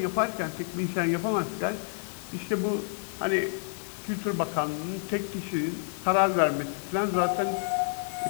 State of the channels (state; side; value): silent; right; 59 dB below the other